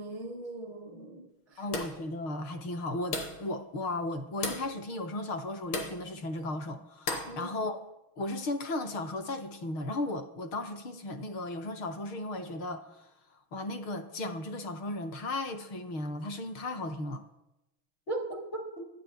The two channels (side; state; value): right; late; 6.3 ms